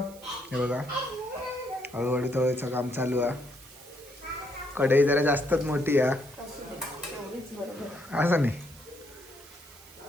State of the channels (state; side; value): noise; right; hiss, 21 dB below the sound